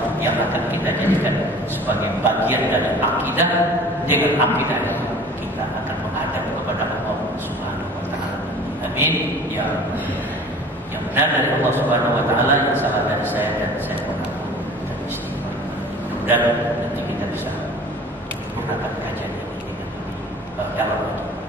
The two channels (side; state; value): both; normal; correlation 0.45